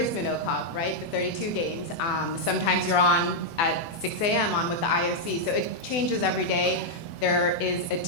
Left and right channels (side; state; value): right; late; 24 ms